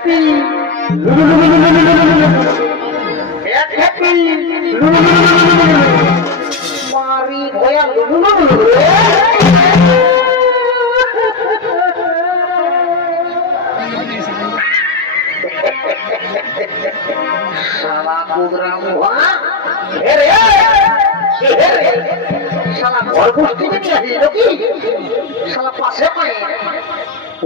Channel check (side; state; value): right; quieter; 4.0 dB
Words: মারি ভয়া শালা প্রোগ্রাম শালা ঘর গোষ্ঠী নিয়ে আসিল কি শালা পাশে পায়